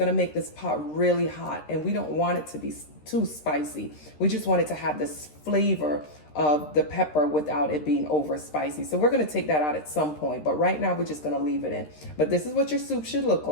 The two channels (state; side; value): late; right; 13 ms